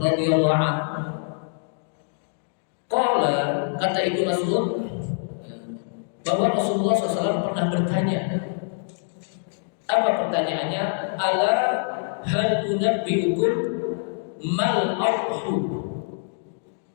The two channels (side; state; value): right; silent; digital silence